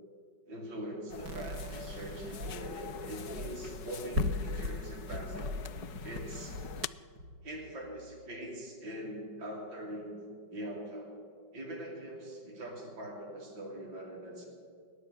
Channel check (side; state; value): left; late; 5.3 ms